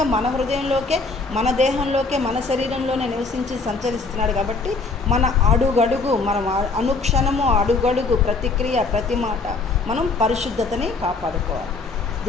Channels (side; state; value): right; quieter; 4.0 dB